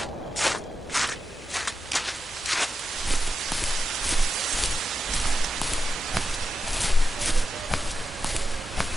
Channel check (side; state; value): both; normal; correlation 0.90